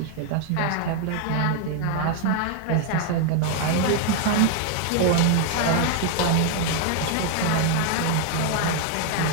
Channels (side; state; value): both; different; correlation 0.00